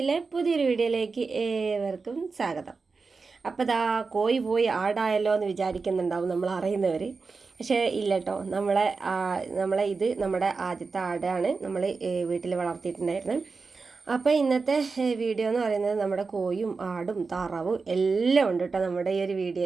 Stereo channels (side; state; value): left; quieter; 4.5 dB